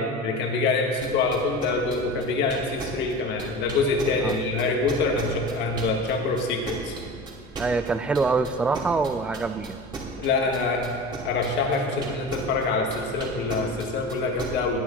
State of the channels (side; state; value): both; normal; correlation 0.32